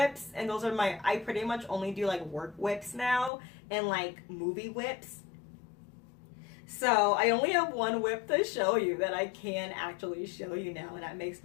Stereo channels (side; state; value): right; drops out; at 3.3 s